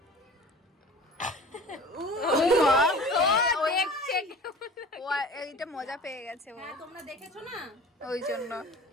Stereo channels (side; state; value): both; normal; correlation 0.41